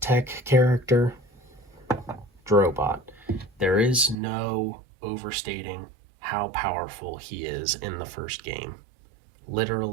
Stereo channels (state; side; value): drops out; left; at 4.2 s